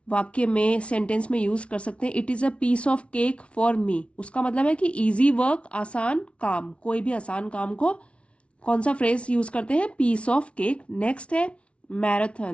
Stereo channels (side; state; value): right; late; 0.061 ms